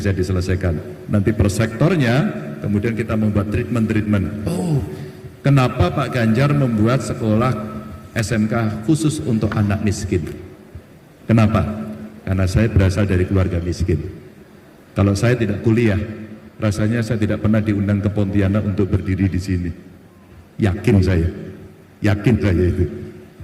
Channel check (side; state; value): both; identical; correlation 1.00